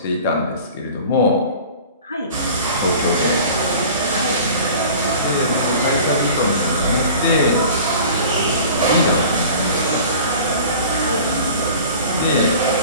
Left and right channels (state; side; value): inverted; both; correlation -0.43